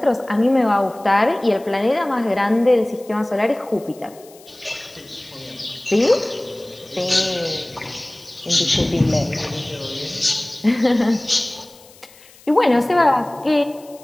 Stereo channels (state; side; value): noise; left; hiss, 24 dB below the sound